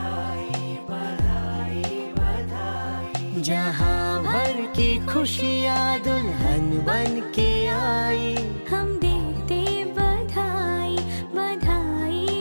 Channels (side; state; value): both; inverted; correlation -1.00